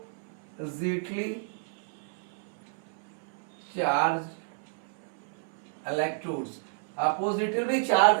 charged electrodes, oppositely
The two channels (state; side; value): silent; left; 56 dB below the other